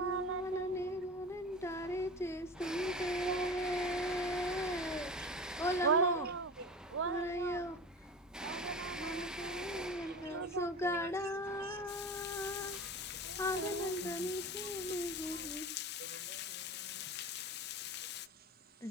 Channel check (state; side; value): normal; both; correlation 0.32